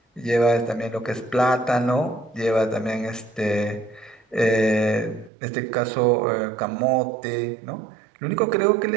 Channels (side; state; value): left; drops out; at 5.3 s